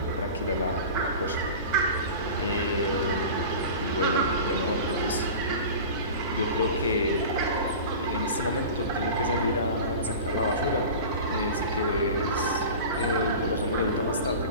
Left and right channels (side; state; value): both; inverted; correlation -0.34